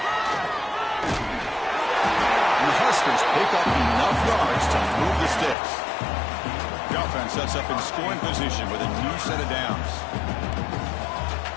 And the Huskers pick up enough yards to move the sticks. The offense sets up in scoring position with a new set of downs.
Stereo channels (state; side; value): drops out; right; at 5.6 s